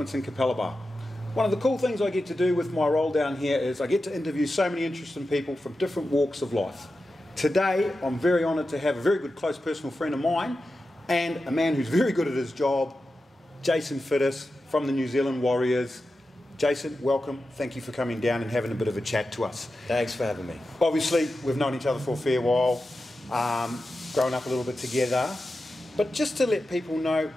in Capalaba. One of the cool things I get to do with my role down here is I get to interview so many interesting people from different walks of life. Today I'm very honoured to have a very good close personal friend of mine and a man who's very good at his job, Jason Fiddes from the New Zealand Warriors. Jason, welcome. Thank you for coming down and having a bit of a chat to us. Thanks for having me. Obviously we've known each other for a fair while, grown up a little bit together, but just to let people know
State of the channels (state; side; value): normal; both; correlation 0.92